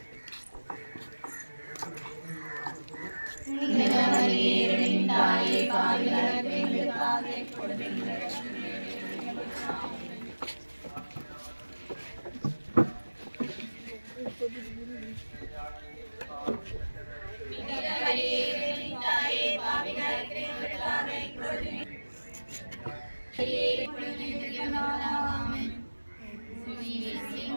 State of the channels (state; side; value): inverted; both; correlation -1.00